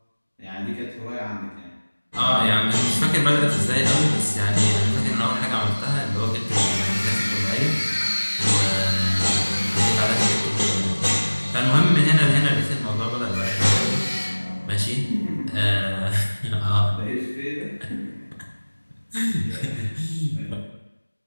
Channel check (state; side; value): inverted; both; correlation -1.00